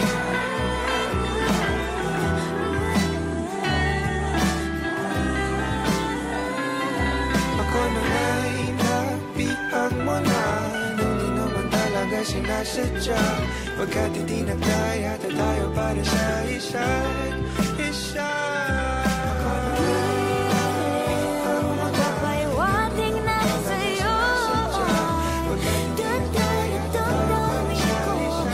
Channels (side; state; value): both; identical; correlation 1.00